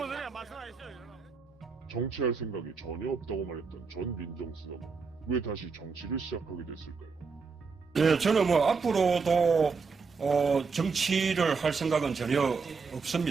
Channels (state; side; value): quieter; left; 5.0 dB